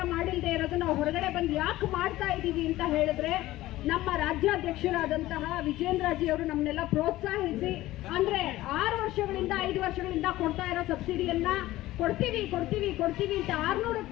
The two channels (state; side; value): quieter; right; 16.4 dB